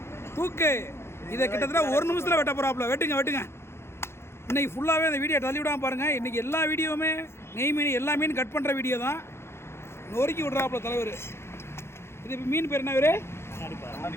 தூக்கு. இதை கிட்டத்தட்ட 1 நிமிஷத்தில் வெட்ட போகிறாப்புல. வெட்டுங்க. இன்றைக்கி ஃபுல்லாகவே அந்த வீடியோ தள்ளி விடாமல் பாருங்கள். இன்றைக்கி எல்லா வீடியோவுமே நெய் மீன் எல்லா மீன் கட் பண்ணுற வீடியோ தான். நொறுக்கி விட்றாப்புல தலைவர். இது மீன் பேர் என்ன பேர்?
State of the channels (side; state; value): right; late; 0.12 ms